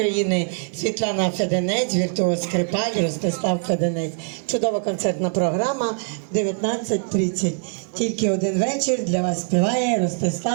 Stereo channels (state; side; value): silent; left; 61 dB below the other